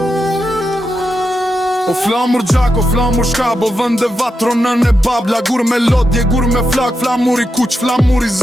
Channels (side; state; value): both; normal; correlation 0.86